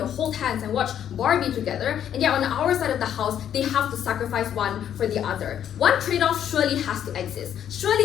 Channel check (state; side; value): quieter; right; 9.8 dB